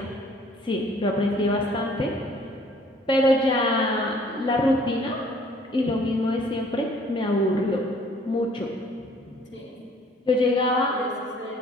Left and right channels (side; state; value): both; normal; correlation 0.57